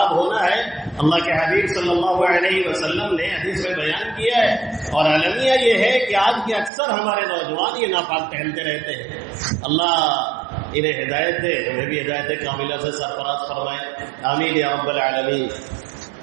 ہونا ہے. اللہ کے حبیب صلی اللہ علیہ وسلم نے حدیث میں بیان کیا ہے. اور المیہ یہ ہے کہ آج کے اکثر ہمارے نوجوان یہ ناپاک پہنتے رہتے ہیں. اللہ انہیں ہدایت دے، ہمیں بھی ہدایت کاملہ سے سرفراز فرمائے، آمین یا رب العالمین.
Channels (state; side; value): drops out; left; at 6.7 s